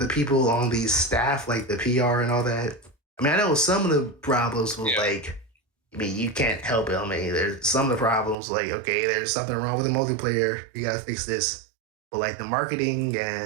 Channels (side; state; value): left; drops out; at 8.3 s